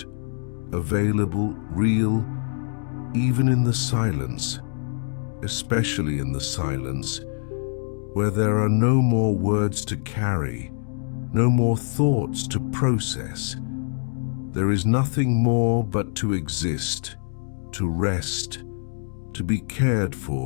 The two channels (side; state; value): right; silent; 62 dB below the other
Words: available, real, even in the silence, especially in the silence, where there are no more words to carry, no more thoughts to process. There is nothing more but to exist, to rest, to be cared